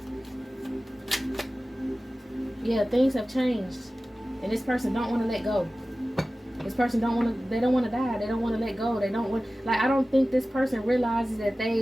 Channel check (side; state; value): both; normal; correlation 0.96